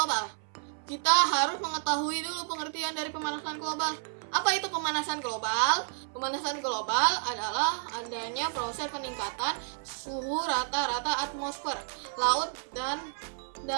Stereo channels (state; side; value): silent; left; 56 dB below the other